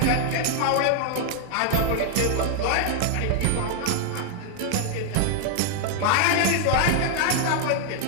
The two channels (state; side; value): different; both; correlation 0.00